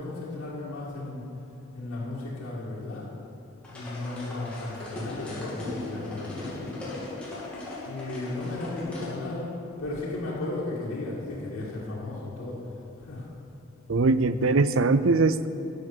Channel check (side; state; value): both; normal; correlation 0.34